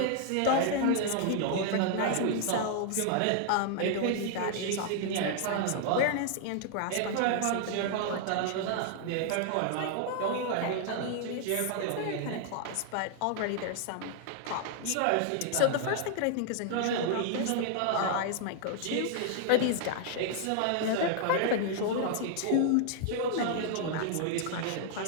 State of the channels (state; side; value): different; both; correlation 0.00